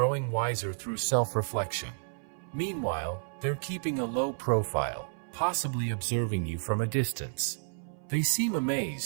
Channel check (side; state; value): left; silent; 57 dB below the other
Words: wiser through self-reflection. Meanwhile, they're keeping a low profile, possibly observing you from a distance. They seem